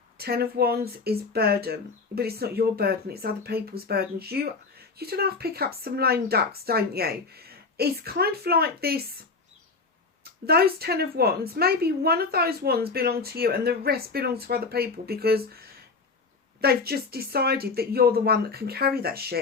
10 of Wands is burden. But it's not your burden. It's other people's burdens. You don't have to pick up some lame ducks, don't you? It's kind of like this. Those 10 of Wands, maybe one of those wands belong to you and the rest belong to other people, because they've just decided that you're the one that can carry that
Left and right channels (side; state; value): right; quieter; 4.3 dB